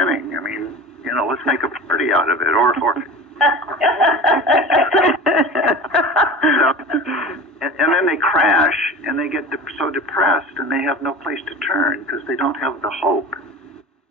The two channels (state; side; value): normal; both; correlation 0.35